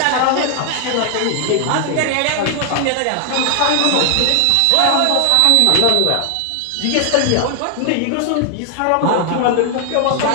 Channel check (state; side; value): different; both; correlation 0.00